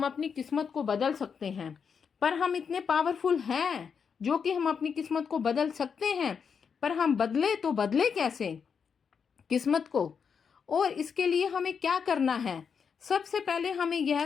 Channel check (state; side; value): quieter; right; 6.4 dB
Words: अपनी किस्मत को बदल सकते हैं। पर हम इतने पावरफुल हैं जो कि हम अपनी किस्मत को बदल सकते हैं, पर हम बदले तो बदले कैसे किस्मत को? और इसके लिए हमें क्या करना है? सबसे पहले हमें